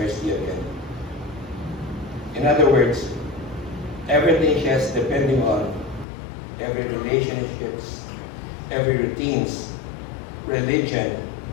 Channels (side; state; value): right; drops out; at 6.1 s